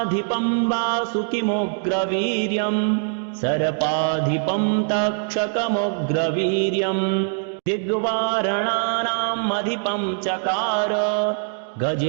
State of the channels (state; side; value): silent; left; 64 dB below the other